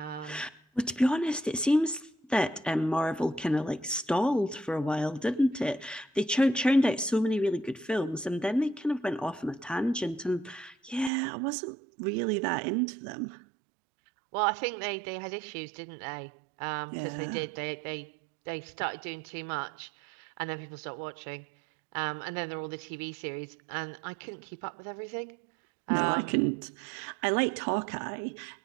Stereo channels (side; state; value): left; drops out; at 11.1 s